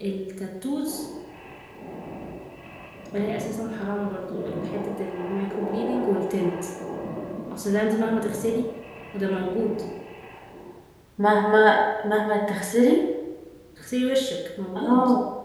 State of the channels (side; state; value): both; identical; correlation 1.00